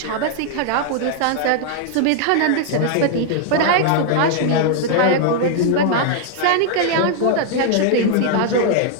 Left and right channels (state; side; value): different; both; correlation 0.00